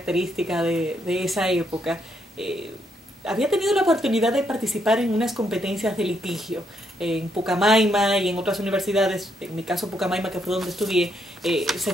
de esa época. Había tenido la oportunidad de participar en unas competencias de litigio en Pucamaima y en otras universidades. En mi caso Pucamaima, que fue donde estudié, se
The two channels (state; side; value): normal; both; correlation 0.76